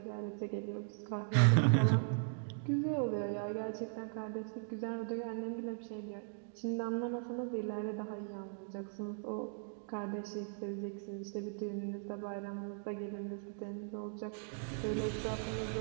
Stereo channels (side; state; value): left; silent; 52 dB below the other